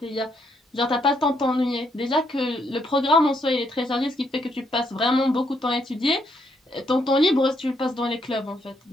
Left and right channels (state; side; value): normal; both; correlation 0.75